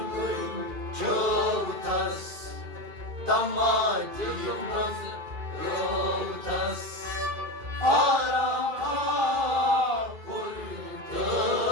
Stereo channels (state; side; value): late; left; 2.5 ms